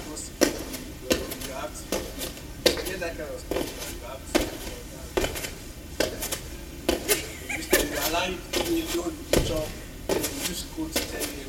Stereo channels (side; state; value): both; identical; correlation 1.00